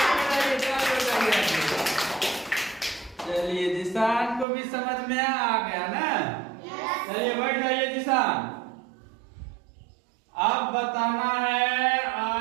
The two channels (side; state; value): left; drops out; at 4.5 s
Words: चलिए जिसान को भी समझ में आ गया ना। चलिए बैठ जाइए जिसान। अब बताना है